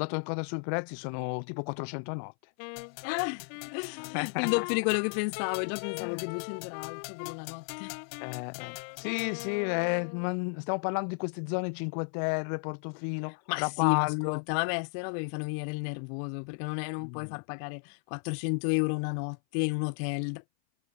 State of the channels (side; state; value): right; silent; 56 dB below the other